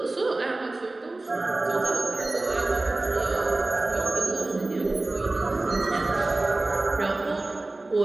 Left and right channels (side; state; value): left; quieter; 3.0 dB